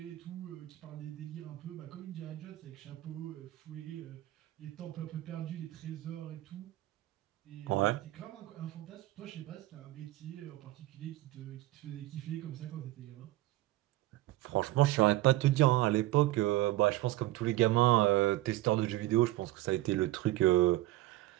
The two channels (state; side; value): quieter; left; 16.8 dB